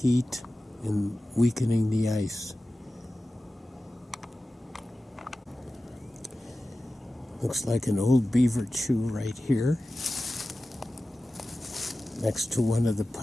and weakening the ice. Looks like an old beaver chew right here next to one of the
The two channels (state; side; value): normal; both; correlation 0.95